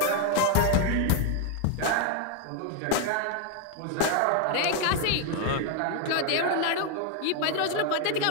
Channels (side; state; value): both; different; correlation 0.01